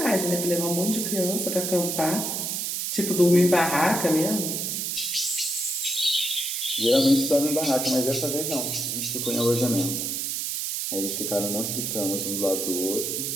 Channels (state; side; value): noise; right; hiss, 2 dB below the sound